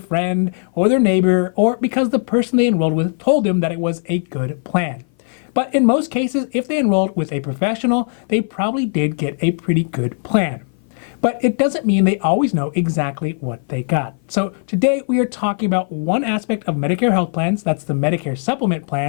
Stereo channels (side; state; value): right; silent; 57 dB below the other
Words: or their neighbor or because the person they enrolled with told them that it was a good plan. But in most cases, if they enrolled with a professional, they probably did get a pretty good plan. But it doesn't mean they always know exactly what they got. So today we are talking about one aspect of Medicare health plans, that's the Medicare supplement